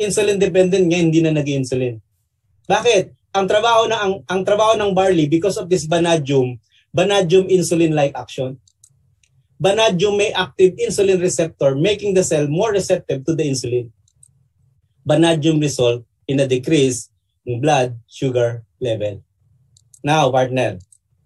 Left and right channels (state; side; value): identical; both; correlation 1.00